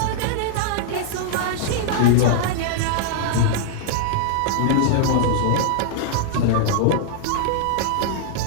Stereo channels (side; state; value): both; different; correlation -0.01